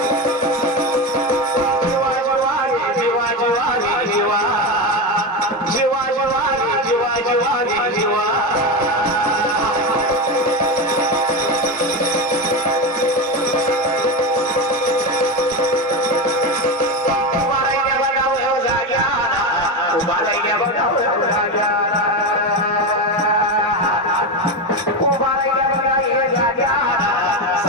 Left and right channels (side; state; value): both; normal; correlation 0.17